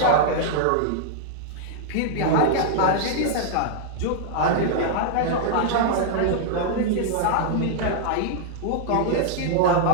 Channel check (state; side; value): different; both; correlation -0.01